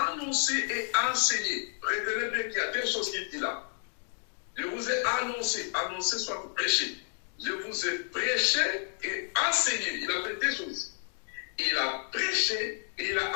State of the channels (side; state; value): right; silent; 57 dB below the other